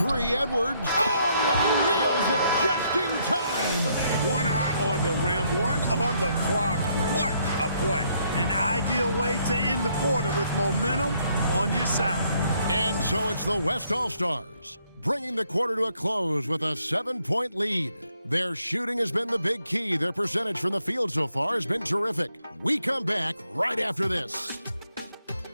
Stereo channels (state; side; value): inverted; both; correlation -0.71